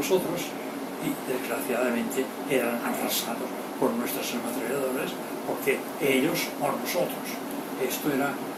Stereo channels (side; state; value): both; identical; correlation 1.00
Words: y desgraciadamente eran arrasados por nuestras ametralladoras, porque ellos o nosotros. Esto era